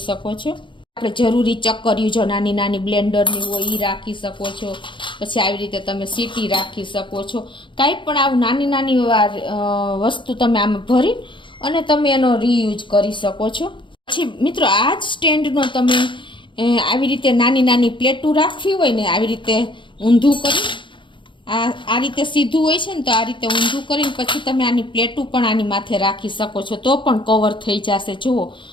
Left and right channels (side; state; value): right; late; 0.24 ms